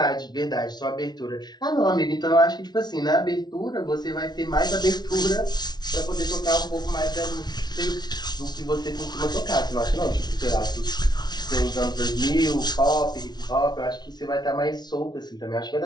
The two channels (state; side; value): late; right; 0.20 ms